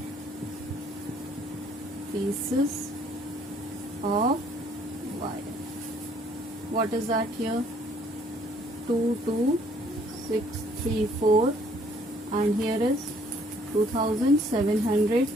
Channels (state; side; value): normal; both; correlation 0.62